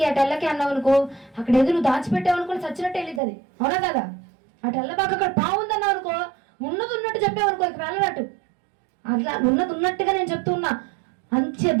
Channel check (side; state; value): left; drops out; at 3.2 s